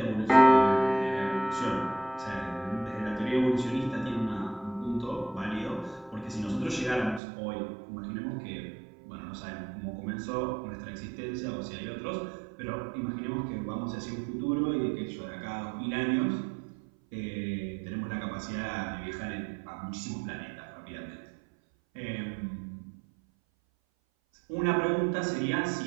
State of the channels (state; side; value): drops out; left; at 7.2 s